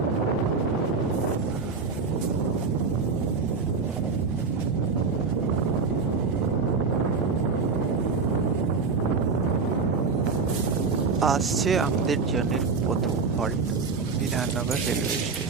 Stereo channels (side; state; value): left; quieter; 4.8 dB